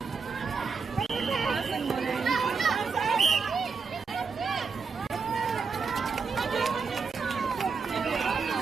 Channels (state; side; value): quieter; left; 5.1 dB